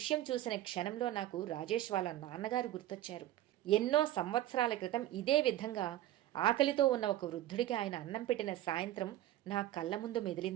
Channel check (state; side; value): quieter; left; 13.9 dB